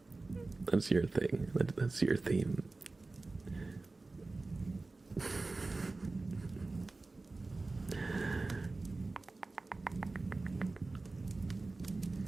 That's your thing. That's your theme.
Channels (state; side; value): quieter; left; 3.4 dB